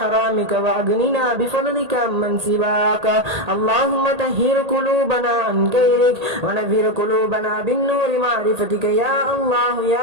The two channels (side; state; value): left; late; 1.8 ms